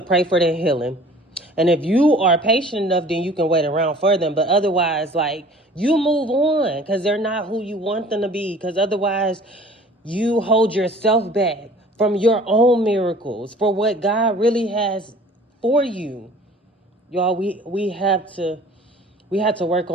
for their healing. And if you are patient enough, then you can wait around for them. But otherwise, like, you move on because they're not who you want them to be. Because otherwise, you hold yourself back from your own miracles, for what God really has for you. Y'all, we have to work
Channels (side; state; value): both; normal; correlation 0.48